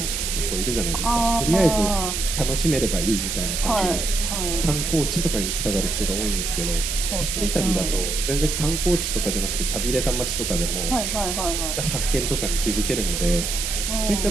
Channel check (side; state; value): right; noise; hiss, 2 dB below the sound